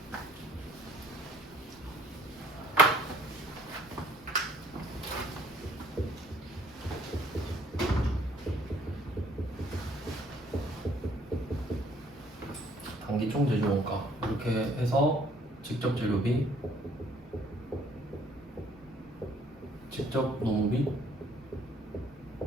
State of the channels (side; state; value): both; normal; correlation 0.61